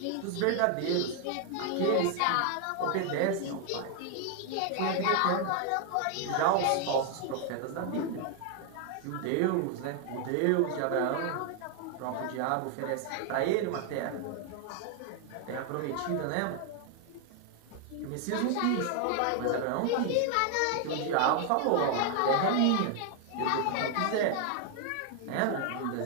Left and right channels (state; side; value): different; both; correlation 0.00